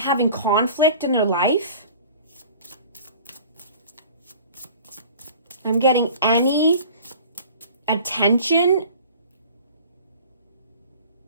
conflict in their life. I'm getting any attention,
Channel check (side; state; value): both; inverted; correlation -0.45